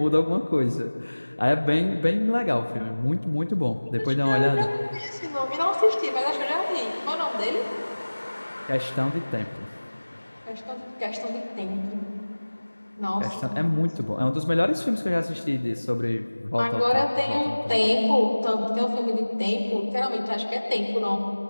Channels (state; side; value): inverted; both; correlation -1.00